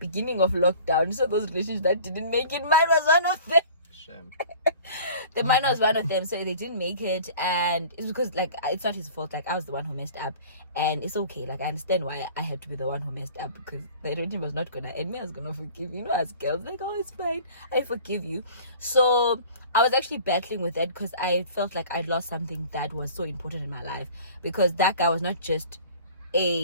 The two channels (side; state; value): both; inverted; correlation -0.45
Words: of lockdown. So those relationships that didn't make it, mine was one of them. Mine was one of them, so they didn't make it, and it's because like it's not his fault. Like, I was the one who messed up, and it's okay. Like, I understand why I had to be the one who messed up, because the relationship was not gonna end. Me, I was gonna forgive, as girls, like, oh, it's fine, I forgive you. So I was actually battling with that, because I felt like I'd lost something that was so important in my life, because that guy was not just